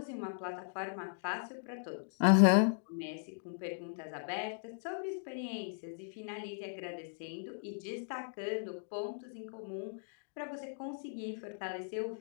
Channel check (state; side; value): silent; right; digital silence